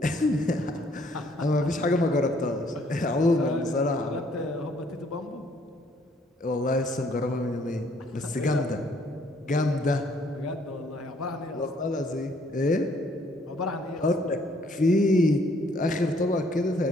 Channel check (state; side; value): normal; both; correlation 0.64